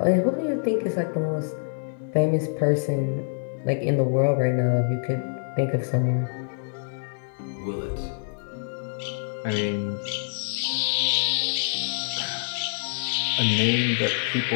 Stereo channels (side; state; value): right; silent; digital silence